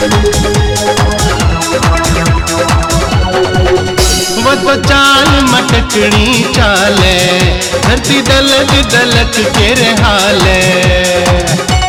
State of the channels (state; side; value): identical; both; correlation 1.00